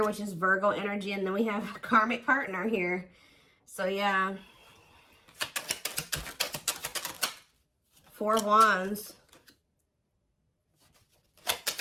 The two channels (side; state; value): both; identical; correlation 1.00